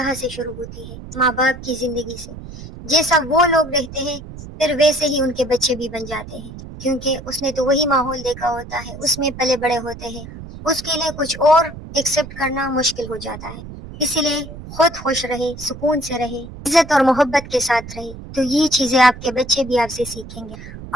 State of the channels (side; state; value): right; noise; rumble, 13 dB below the sound